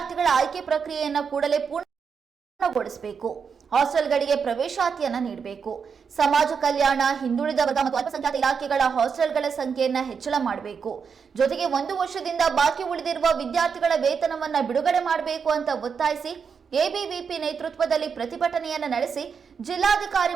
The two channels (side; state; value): left; quieter; 6.1 dB